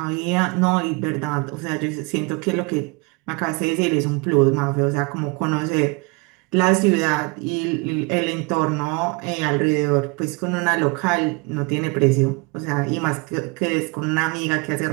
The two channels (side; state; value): left; quieter; 28.2 dB